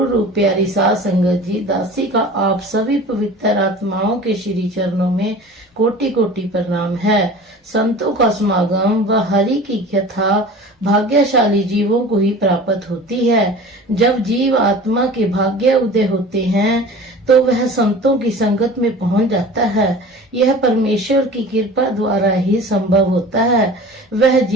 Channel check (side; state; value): both; normal; correlation 0.39